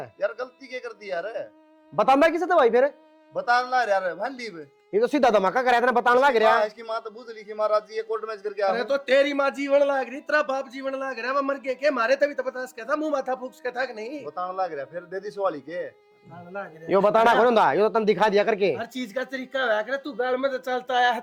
है यार गलती क्या कर दी यार बताना किसे तो भाई फिर बताना यार भाई लीव ये तो सीधा धमाका कराया था बताने लग रहा इसकी माँ तो बूझ लिखी महाराज जी ये कोर्ट मैच करके अरे आ तो तेरी माँ जीवन लाग रही तेरा बाप जीवन लाग रहा है वो मर के मारे तभी तो बता सका था मुंह माथा फूक सका था कि नहीं बताने लग रहा फिर दे दी सवाली के लाग रहा है। यो बताना कौन था यो तो तुम दिखा दिया करके हर चीज का तरीका है अगर तू घर में तो चलता आया है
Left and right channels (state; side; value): identical; both; correlation 1.00